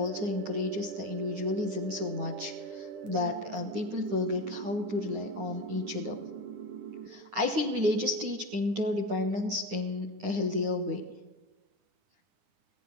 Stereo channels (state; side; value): late; left; 9.6 ms